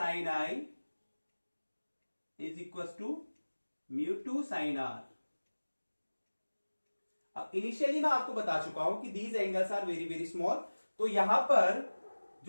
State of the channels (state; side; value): inverted; both; correlation -1.00